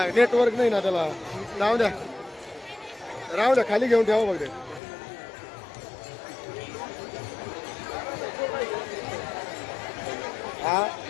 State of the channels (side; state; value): right; drops out; at 4.8 s